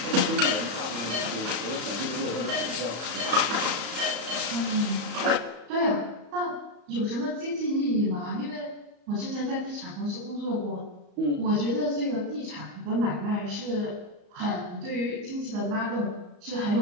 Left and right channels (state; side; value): late; left; 34 ms